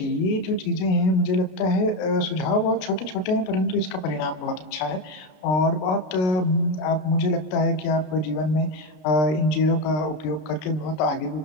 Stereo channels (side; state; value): right; late; 33 ms